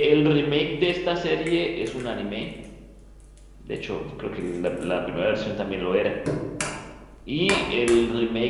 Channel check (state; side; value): identical; both; correlation 1.00